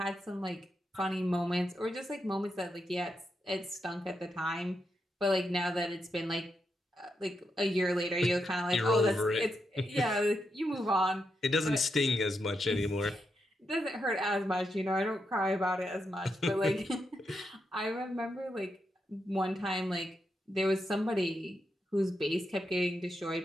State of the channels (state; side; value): normal; both; correlation 0.84